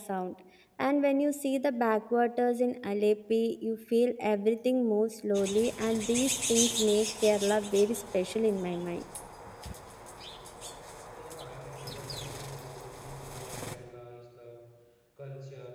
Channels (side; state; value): both; identical; correlation 1.00